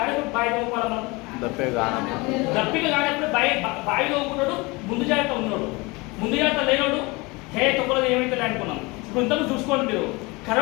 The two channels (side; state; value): right; quieter; 25.0 dB